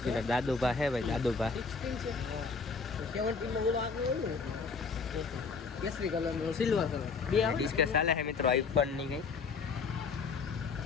દાદુભા છે ભાઈ. દાદુભા કેસરી કલર નો સિલ્વર કલર બે ડિસ્કસ ચાલે છે મિત્રો. આઈફોન ની કઈ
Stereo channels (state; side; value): quieter; right; 4.9 dB